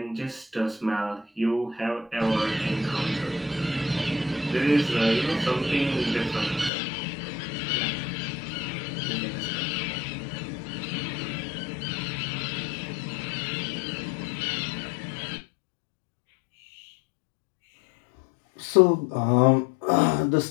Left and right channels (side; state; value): right; drops out; at 6.7 s